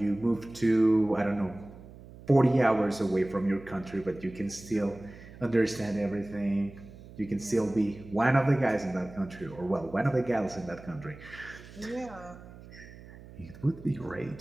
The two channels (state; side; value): noise; right; hum, 18 dB below the sound